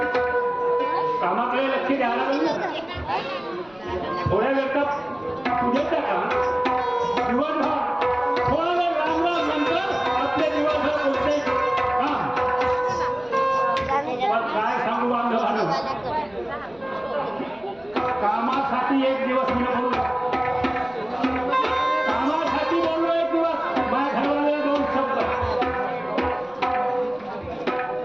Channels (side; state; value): left; noise; rumble, 29 dB below the sound